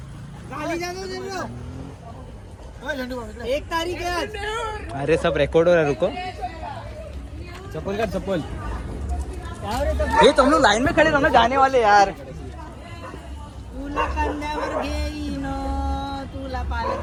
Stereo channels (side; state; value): both; identical; correlation 1.00